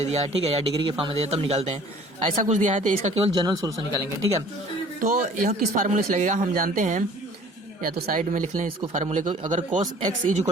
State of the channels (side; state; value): both; normal; correlation 0.50